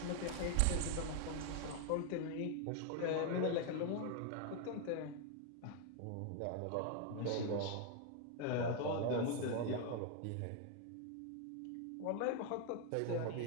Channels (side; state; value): both; different; correlation 0.01